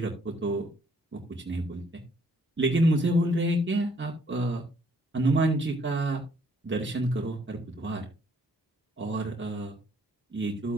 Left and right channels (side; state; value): both; normal; correlation 0.65